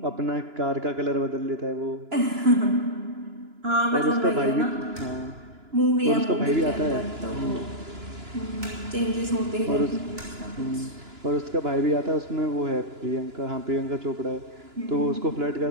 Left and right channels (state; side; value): late; left; 2.9 ms